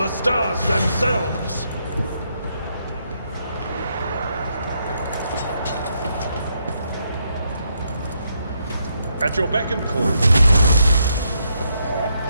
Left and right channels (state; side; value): inverted; both; correlation -0.78